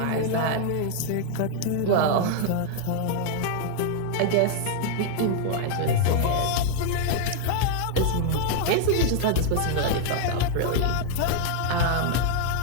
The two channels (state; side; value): different; both; correlation -0.01